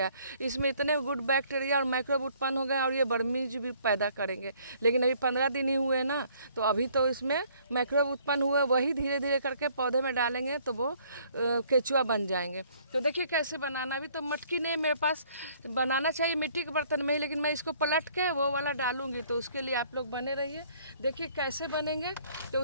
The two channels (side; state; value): both; inverted; correlation -0.61